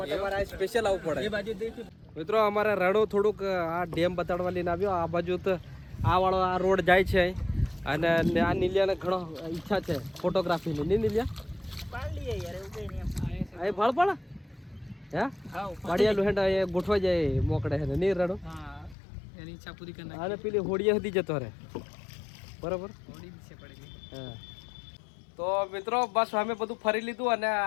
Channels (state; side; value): drops out; right; at 18.9 s